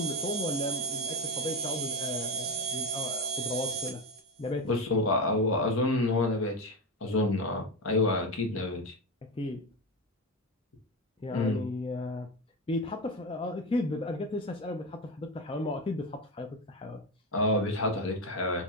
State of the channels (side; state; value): both; normal; correlation 0.17